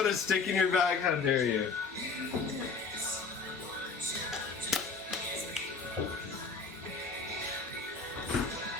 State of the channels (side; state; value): right; quieter; 4.7 dB